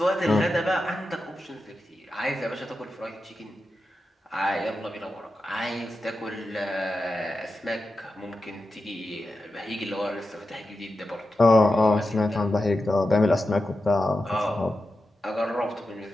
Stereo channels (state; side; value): normal; both; correlation 0.90